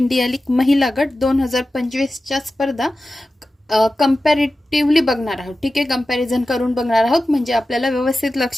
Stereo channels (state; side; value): normal; both; correlation 0.94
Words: लीग महिला गट 2025च्या स्पर्धा कंपॅरेटिव्हली बघणार आहोत. ठीक आहे, कंपॅरिझन करून बघणार आहोत म्हणजे आपल्याला व्यवस्थित